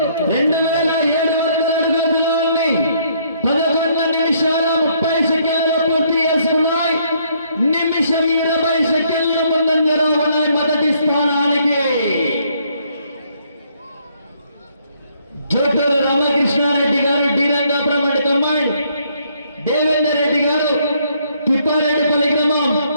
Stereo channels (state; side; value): inverted; both; correlation -0.68